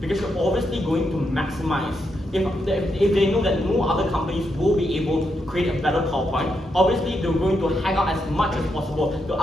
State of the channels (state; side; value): normal; both; correlation 0.82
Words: Because you're obviously going to maximize. If they know that no other companies will be able to create a better PowerPoint, obviously they're going to hang out as much as possible to